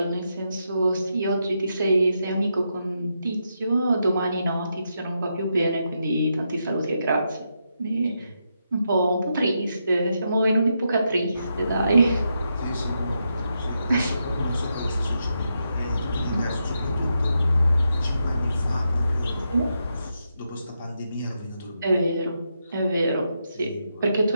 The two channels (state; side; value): inverted; both; correlation -0.83